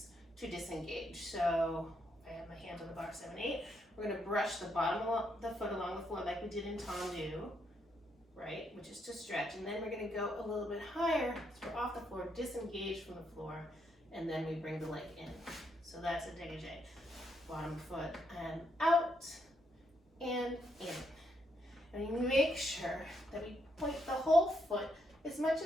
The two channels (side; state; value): both; normal; correlation 0.77